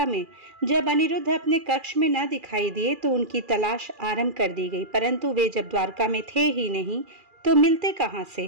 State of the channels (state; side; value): late; left; 2.4 ms